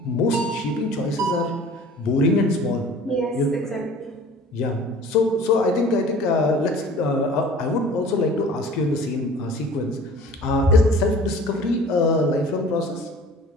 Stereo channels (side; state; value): both; normal; correlation 0.46